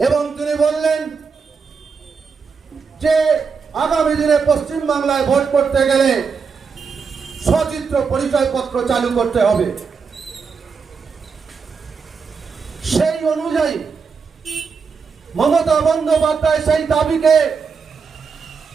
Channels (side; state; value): left; quieter; 5.5 dB